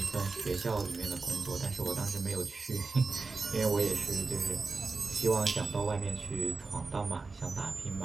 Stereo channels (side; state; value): left; quieter; 4.0 dB